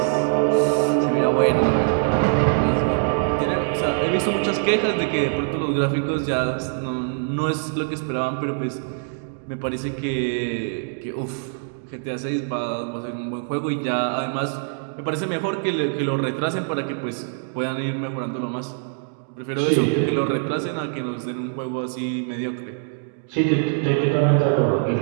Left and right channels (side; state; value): left; silent; digital silence